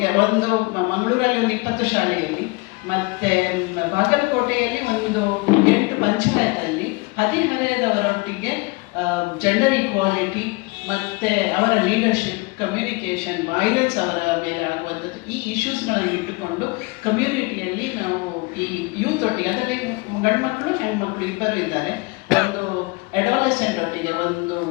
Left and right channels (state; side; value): quieter; right; 26.0 dB